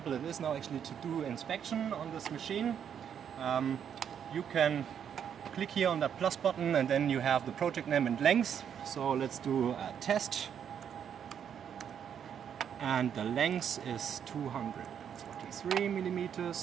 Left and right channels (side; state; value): left; quieter; 8.4 dB